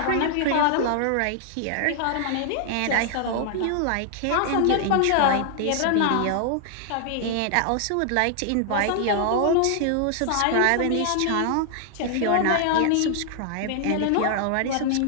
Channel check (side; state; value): both; different; correlation 0.00